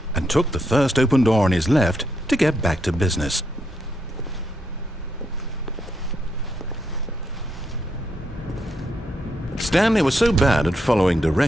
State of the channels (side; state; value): both; normal; correlation 0.79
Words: and took the first open door on his left to get back to business. Stanley was so bad at following